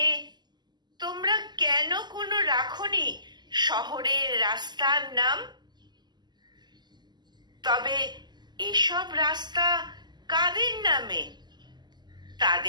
তোমরা কেন কোনো রাখনি শহরের রাস্তার নাম? তবে এসব রাস্তা কাদের নামে,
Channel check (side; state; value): left; late; 0.21 ms